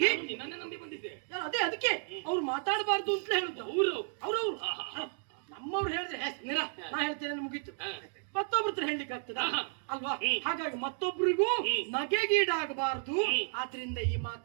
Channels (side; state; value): left; silent; 56 dB below the other